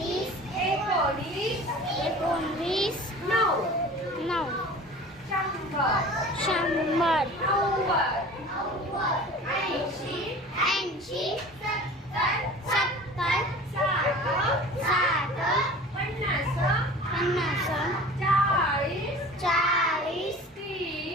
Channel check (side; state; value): both; normal; correlation 0.41